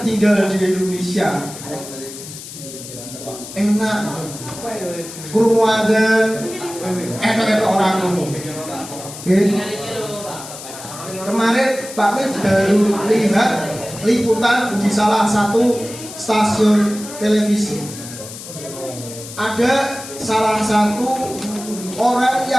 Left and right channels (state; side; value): noise; left; hiss, 13 dB below the sound